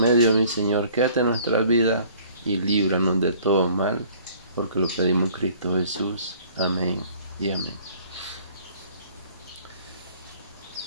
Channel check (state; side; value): inverted; both; correlation -0.55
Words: mi Señor, quédate en nuestra vida y líbranos de todo mal, porque lo pedimos en Cristo Jesús. Amén y amén.